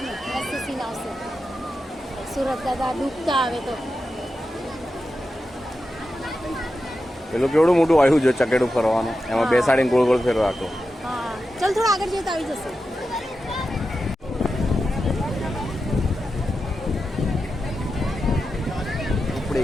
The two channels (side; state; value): both; normal; correlation 0.90